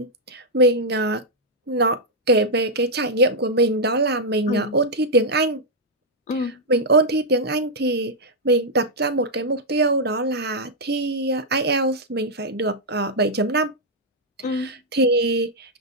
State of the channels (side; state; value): both; normal; correlation -0.05